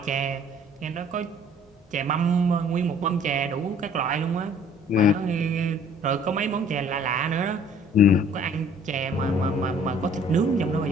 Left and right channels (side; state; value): both; normal; correlation 0.55